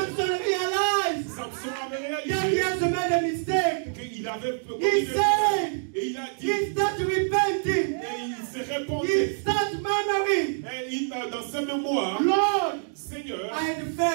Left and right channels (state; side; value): silent; left; digital silence